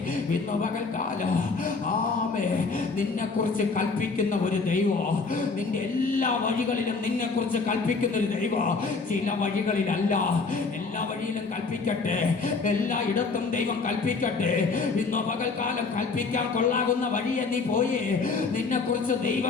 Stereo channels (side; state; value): right; quieter; 4.3 dB